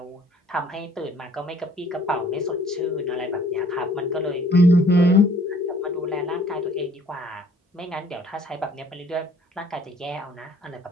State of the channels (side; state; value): both; normal; correlation 0.58